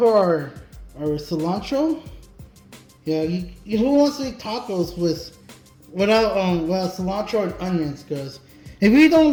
our cilantro. Yeah, who wants to eat tacos without cilantro and onions? Because if you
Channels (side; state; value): both; identical; correlation 1.00